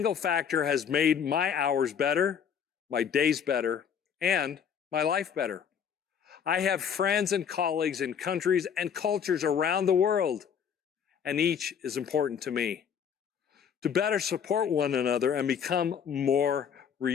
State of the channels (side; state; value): right; quieter; 7.7 dB